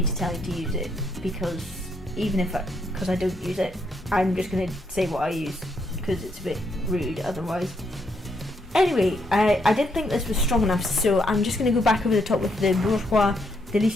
to tell you to use it, because because I don't use it, I'm just going to say what I use, because it's a bit rude otherwise. Anyway, I didn't think this was strong enough, so I'm just going to go back over the top with the Bourjois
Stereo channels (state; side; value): normal; both; correlation 0.76